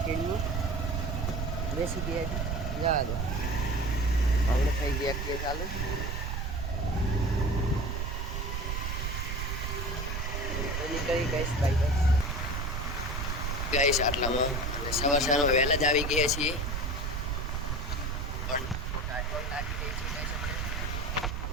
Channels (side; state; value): right; noise; rumble, 2 dB below the sound